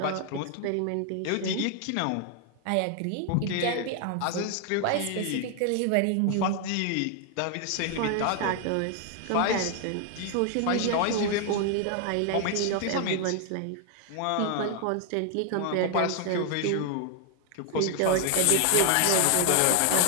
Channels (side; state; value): both; different; correlation 0.00